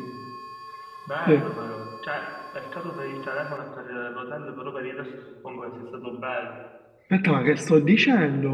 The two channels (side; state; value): both; identical; correlation 1.00